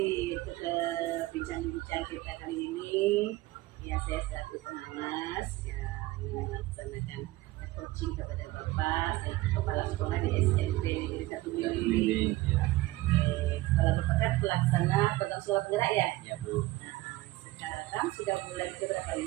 untuk bincang-bincang kita kali ini, ya saya selaku pengawas ya ingin melaksanakan coaching kepada Bapak selaku kepala sekolah di SMP Negeri 1 Mili. ya, Sekolah Bapak kan pelaksana program sekolah penggerak ya. ya Bu. Nah, sekarang sudah bulan berapa? 5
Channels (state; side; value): quieter; left; 18.6 dB